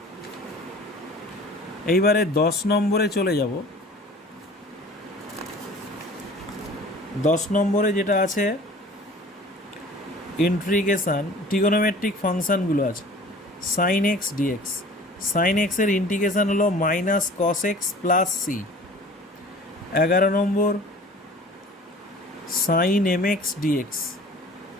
এইবারে 10 নম্বরে চলে যাব। 10 নম্বরে যেটা আছে ইন্টিগ্রেশন ট্রিগোনোমেট্রিক ফাংশানগুলো আছে। সাইন এক্স ডিএক্স, সাইন এক্সের ইন্টিগ্রেশন হলো minus cos x plus c. 11 নম্বর সাইন এম এক্স ডিএক্স,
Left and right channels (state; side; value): normal; both; correlation 0.45